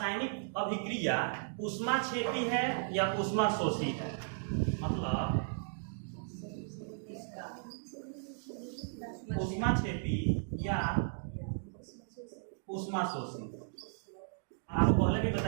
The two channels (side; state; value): left; silent; digital silence